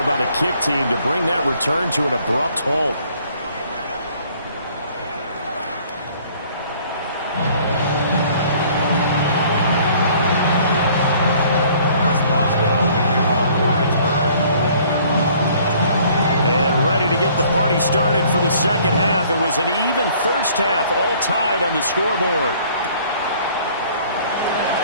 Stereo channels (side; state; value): both; inverted; correlation -0.57